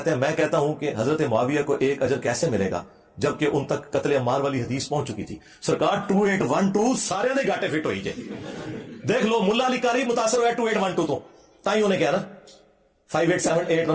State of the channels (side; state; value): both; identical; correlation 1.00